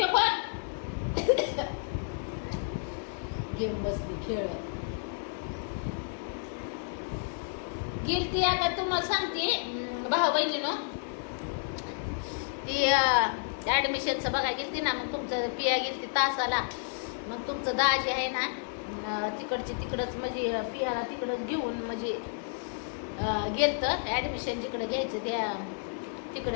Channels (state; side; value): silent; right; 57 dB below the other